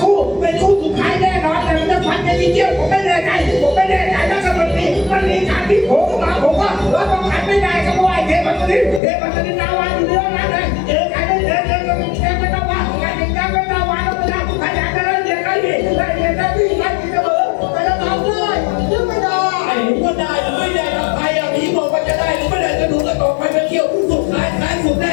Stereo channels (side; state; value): right; drops out; at 9.0 s